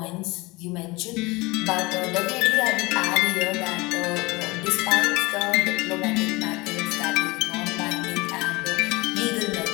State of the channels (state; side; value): quieter; right; 23.4 dB